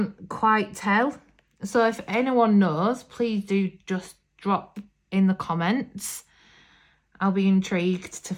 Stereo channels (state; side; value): identical; both; correlation 1.00